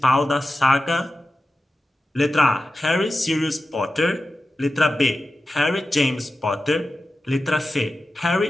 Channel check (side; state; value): both; normal; correlation 0.93